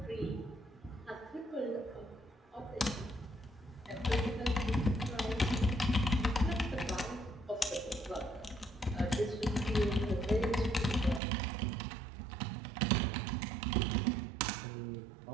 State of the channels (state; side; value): drops out; left; at 11.2 s